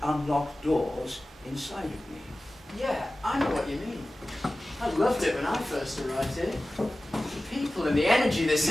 unlocked doors inside of me. Yeah, I know what you mean. I loved it when I first arrived here. The people and the energy this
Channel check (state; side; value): normal; both; correlation 0.96